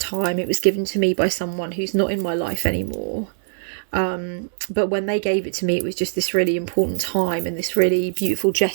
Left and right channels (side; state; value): left; silent; digital silence